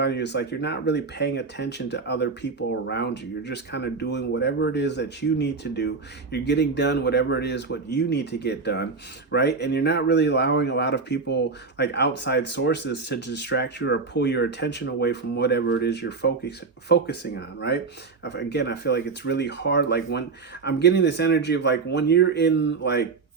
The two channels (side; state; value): left; quieter; 4.5 dB